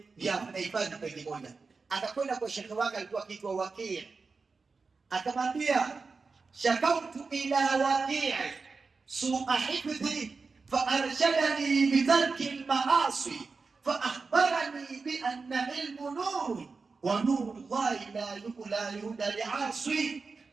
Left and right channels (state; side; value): quieter; left; 4.4 dB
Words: ya anahifadhi peji moja. Akakwenda kwa shekhi wake, alikuwa akiitwa Waqi', akamwambia shakautu ila Waqi' su'a hifdhi فأرشدني بترك المعاصي فأخبرني بأن علم نور ونور الله لا يهدى لعاصي.